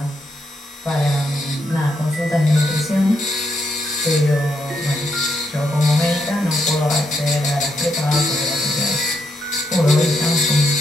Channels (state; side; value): normal; both; correlation 0.80